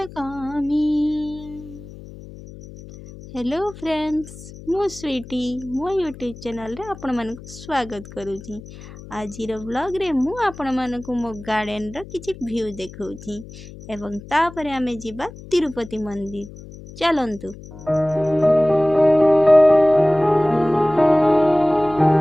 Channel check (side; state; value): left; noise; hum, 16 dB below the sound